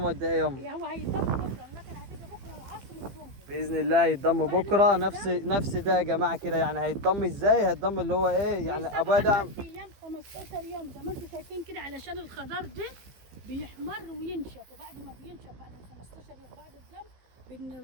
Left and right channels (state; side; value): late; left; 15 ms